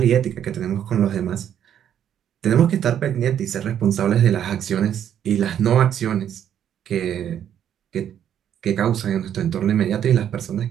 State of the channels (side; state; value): left; quieter; 9.7 dB